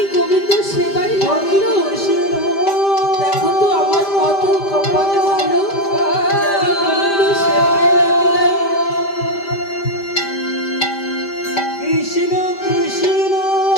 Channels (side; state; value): right; late; 5.1 ms